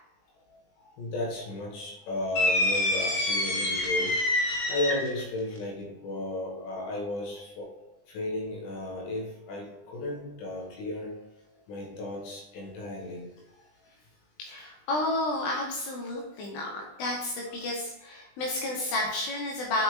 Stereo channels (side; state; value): right; late; 20 ms